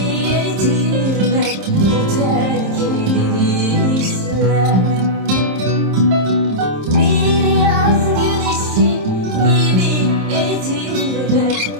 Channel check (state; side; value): late; left; 26 ms